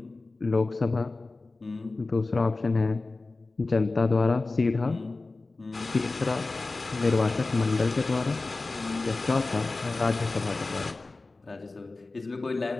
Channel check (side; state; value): right; quieter; 3.4 dB